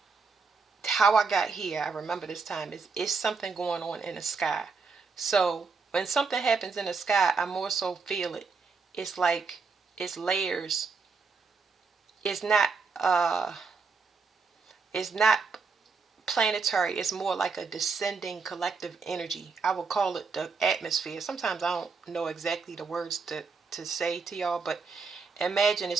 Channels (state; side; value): quieter; left; 4.8 dB